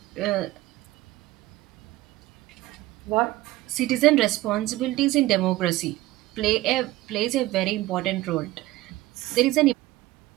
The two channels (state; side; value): quieter; left; 17.5 dB